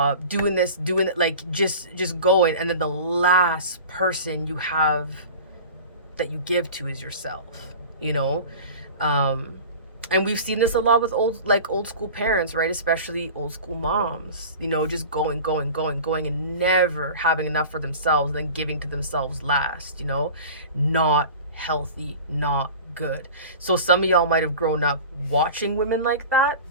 doing this, doing it, like just going. And then the last person you have that you give to is yourself, and we've seen this a lot with old school parents, right? Especially old school moms, just going, and never having enough for themselves, and then giving to themselves last, not healthy, not good. So some of y'all might have grown up watching women like that.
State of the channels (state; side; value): inverted; both; correlation -0.37